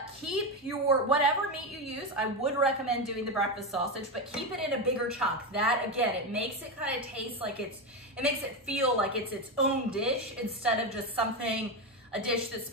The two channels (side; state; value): both; normal; correlation 0.13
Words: keep your, whatever meat you use, I would recommend doing the breakfast sausage, but keep it in a bigger chunk. That, again, it makes it kind of taste like it makes it feel like it's its own dish instead of just a dish that's